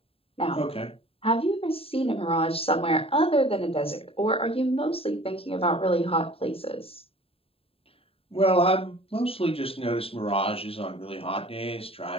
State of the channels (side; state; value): right; late; 0.27 ms